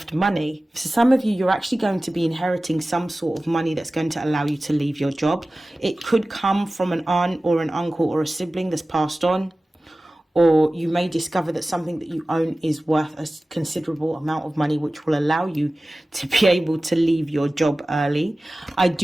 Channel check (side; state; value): both; normal; correlation 0.97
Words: money. For some of you, you're actually going to be inheriting some sort of money that's going to allow you to leave your job. It could come from an aunt or an uncle or a sibling that's passed on, or you may discover that something that you own is worth a considerable amount of money, which will allow you to be able to leave your job early. I